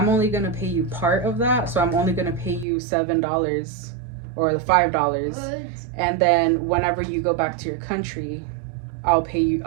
only gonna pay you part of that, so I'm only gonna pay you $7 or the $5, and then whenever you go back to your country,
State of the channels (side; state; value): left; drops out; at 2.7 s